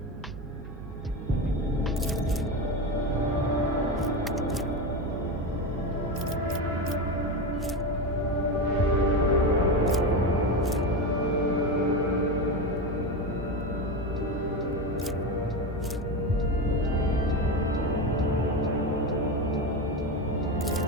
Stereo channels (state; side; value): noise; right; hum, 13 dB below the sound